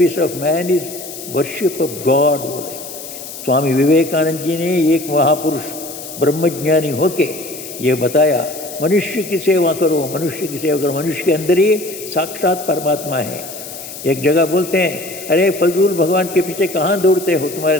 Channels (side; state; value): left; noise; hiss, 12 dB below the sound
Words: of man is worship of God बोले स्वामी विवेकानंद जी ने। एक महापुरुष ब्रह्मज्ञानी होके ये बताया, मनुष्य की सेवा करो, मनुष्य की सेवा करो, मनुष्य के अंदर ही साक्षात परमात्मा है। एक जगह बोलते हैं, अरे फजूल भगवान के पीछे कहाँ दौड़ते हो,